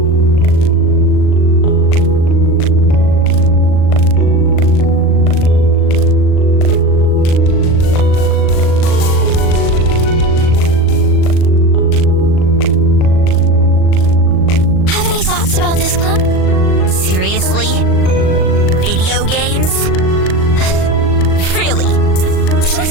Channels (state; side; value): late; right; 38 ms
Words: Thoughts about this club? Seriously? Video games? Really? Who